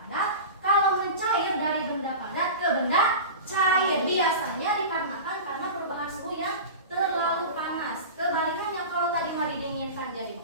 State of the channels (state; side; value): inverted; both; correlation -0.31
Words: benda cair. Biasanya dikarenakan karena perubahan suhu yang terlalu panas. Kebalikannya, kalau tadi mah didinginkan jadi